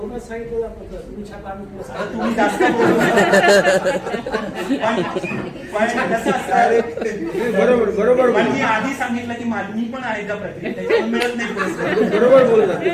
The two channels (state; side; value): identical; both; correlation 1.00